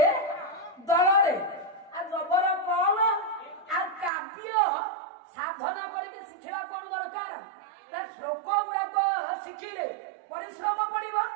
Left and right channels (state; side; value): drops out; left; at 4.1 s